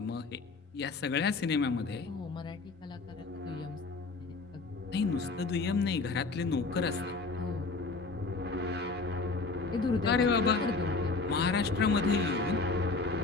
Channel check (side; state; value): right; quieter; 3.9 dB